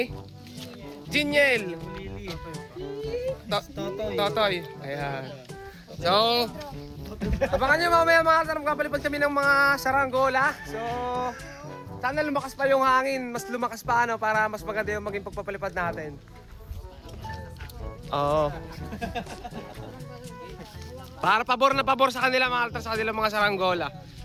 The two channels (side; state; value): both; identical; correlation 1.00